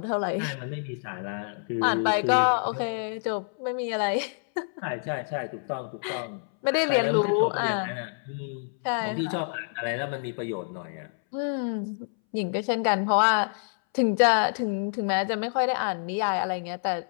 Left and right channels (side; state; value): right; silent; 60 dB below the other